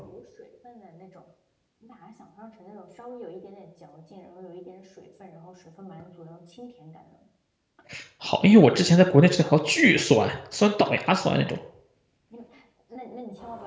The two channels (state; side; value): identical; both; correlation 1.00